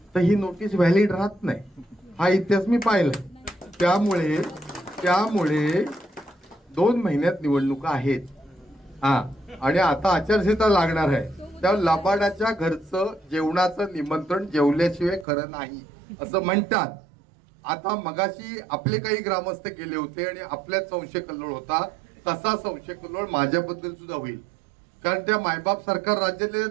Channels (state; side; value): drops out; left; at 15.2 s